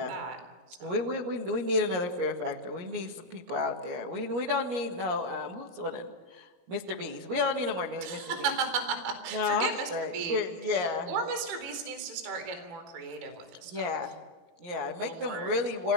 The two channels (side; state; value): left; late; 18 ms